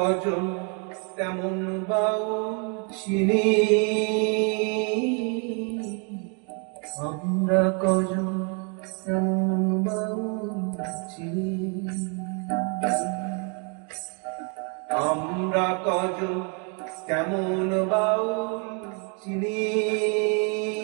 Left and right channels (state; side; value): quieter; left; 37.7 dB